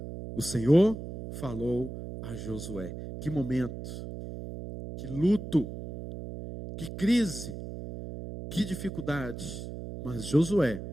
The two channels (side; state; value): right; noise; hum, 9 dB below the sound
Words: O Senhor falou a Josué. Que momento, que luto, que crise, que dificuldade. Mas Josué,